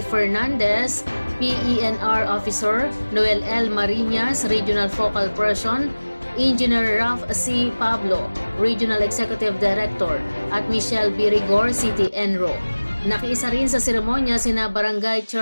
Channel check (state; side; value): inverted; both; correlation -1.00